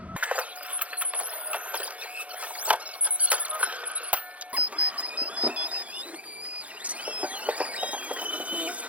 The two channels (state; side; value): late; left; 0.066 ms